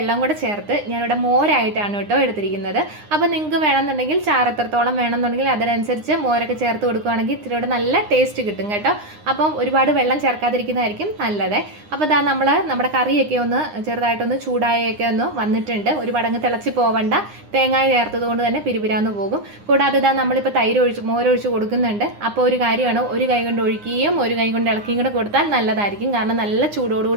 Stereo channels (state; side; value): late; left; 9.8 ms